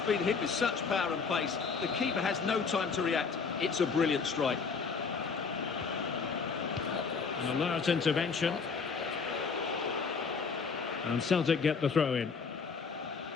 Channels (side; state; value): right; quieter; 5.3 dB